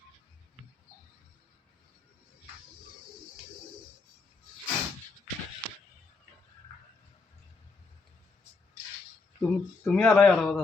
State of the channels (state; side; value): quieter; right; 4.1 dB